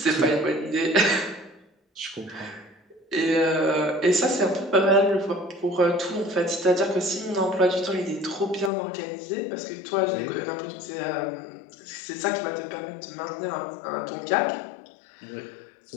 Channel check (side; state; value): right; drops out; at 8.7 s